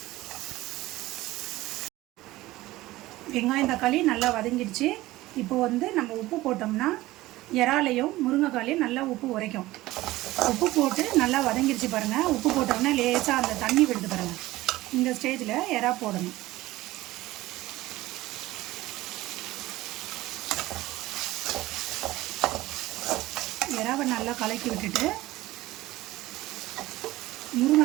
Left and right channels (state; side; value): quieter; left; 17.7 dB